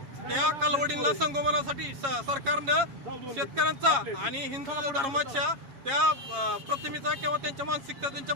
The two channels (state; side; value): late; left; 7.4 ms